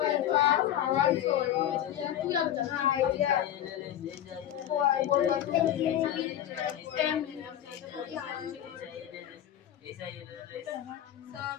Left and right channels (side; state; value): right; quieter; 11.3 dB